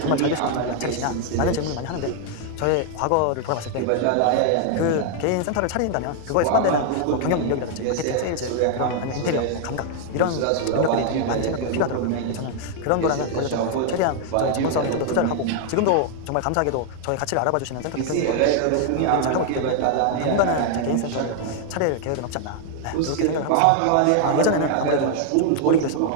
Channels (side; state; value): both; different; correlation 0.00